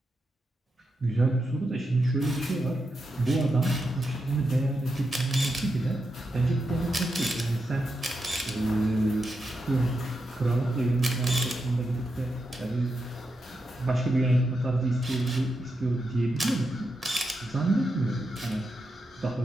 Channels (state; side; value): normal; both; correlation 0.86